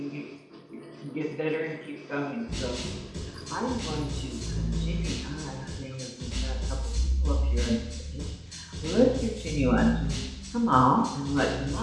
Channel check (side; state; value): both; identical; correlation 1.00